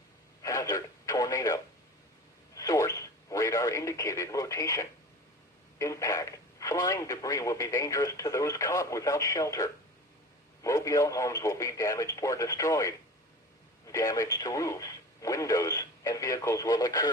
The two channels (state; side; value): normal; both; correlation 0.36